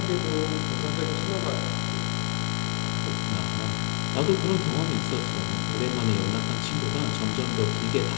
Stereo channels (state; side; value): silent; right; digital silence